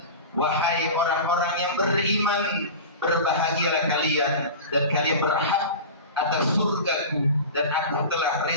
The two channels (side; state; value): both; inverted; correlation -0.31